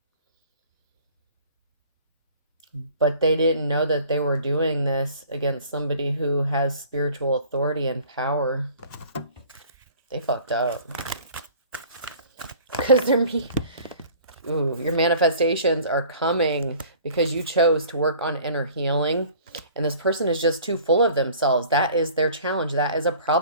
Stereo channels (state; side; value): inverted; both; correlation -0.48